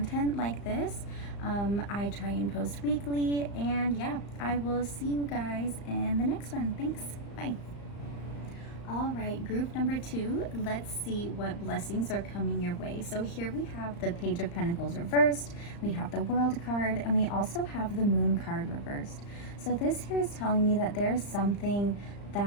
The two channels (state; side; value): late; right; 35 ms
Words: like this. I try and post weekly, and yeah, I will see you guys in the next one. Thanks. Bye. All right, group number 2, let's see what blessings are coming your way. So here we have the Page of Pentacles reversed, we have the World card, and we also have the Moon card reversed. So this here is telling me that there's something